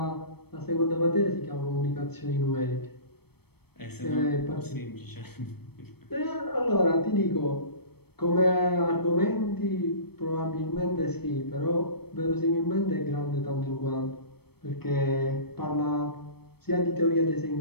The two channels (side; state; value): right; late; 0.97 ms